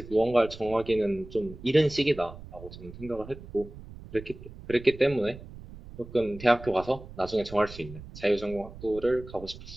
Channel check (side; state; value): right; noise; rumble, 15 dB below the sound